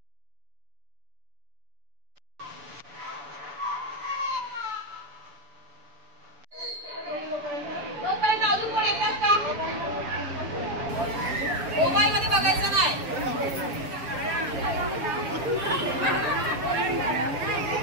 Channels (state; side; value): late; left; 7.3 ms